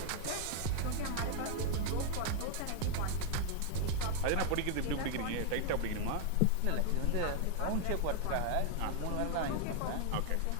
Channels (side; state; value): both; different; correlation 0.00